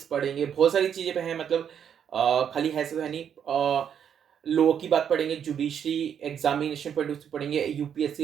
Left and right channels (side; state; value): left; quieter; 8.4 dB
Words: पढ़ेंगे, बहुत सारी चीज़ें पे हैं, मतलब खाली है सब है नहीं। लॉ की बात पढ़ेंगे, जुडिशरी एग्जामिनेशन पढ़ेंगे,